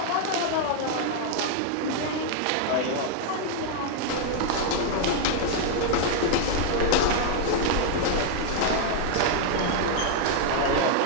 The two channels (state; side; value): different; both; correlation 0.00